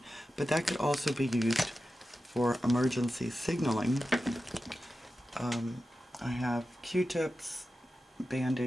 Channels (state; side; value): normal; both; correlation 0.92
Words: But that could also be used for emergency signaling. I have Q-tips,